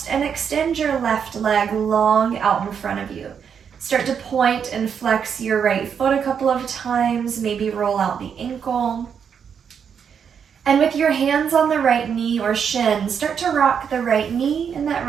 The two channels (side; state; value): left; quieter; 7.3 dB